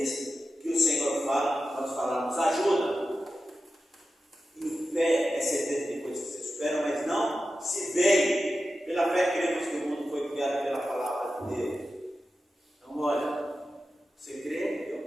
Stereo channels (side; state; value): both; normal; correlation 0.92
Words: que o Senhor fala, nós falamos: ajuda. E fé é certeza de coisas que se esperam, mas não se veem. Pela fé cremos que o mundo foi criado pela palavra de Deus. Então, olha, você crê?